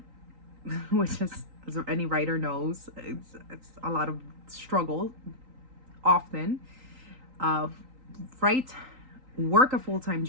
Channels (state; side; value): late; left; 3.8 ms